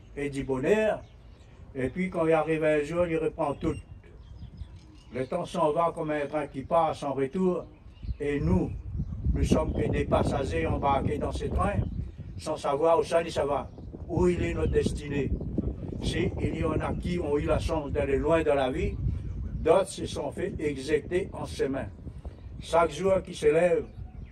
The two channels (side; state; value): both; identical; correlation 1.00